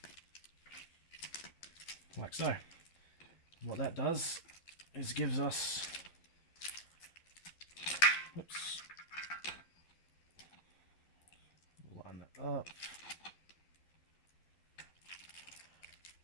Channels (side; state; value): right; late; 12 ms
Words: Like so. What that does is gives us, whoops, line that up.